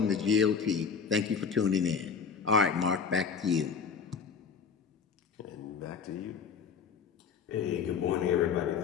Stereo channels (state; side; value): quieter; right; 6.2 dB